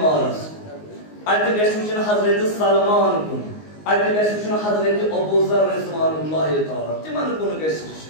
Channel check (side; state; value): right; late; 19 ms